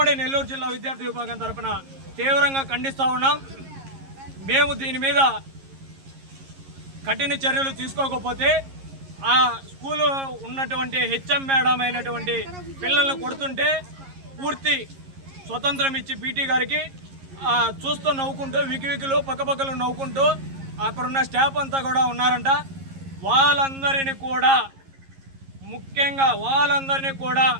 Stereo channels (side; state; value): left; late; 11 ms